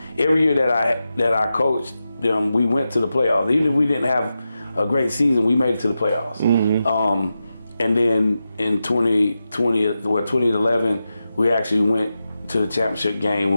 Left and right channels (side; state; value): both; inverted; correlation -0.91